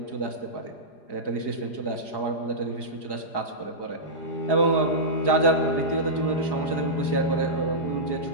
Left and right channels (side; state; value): right; late; 4.9 ms